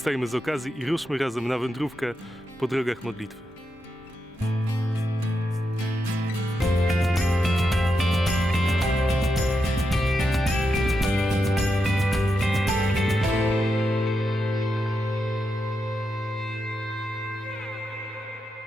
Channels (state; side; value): normal; both; correlation 0.85